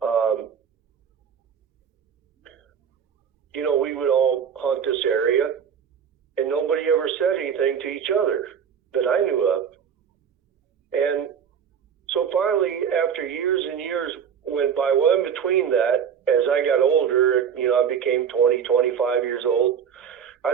we would all hunt this area, and nobody ever said anything to each other that I knew of. And so finally, after years and years went by, well, in between that, as I got older, I became 20, 25 years old,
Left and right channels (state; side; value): quieter; left; 7.6 dB